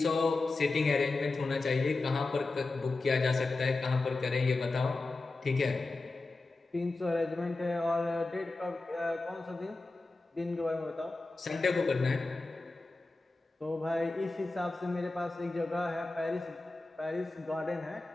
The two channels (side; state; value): right; quieter; 3.3 dB